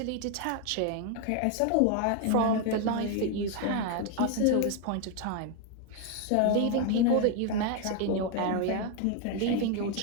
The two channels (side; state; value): both; different; correlation 0.01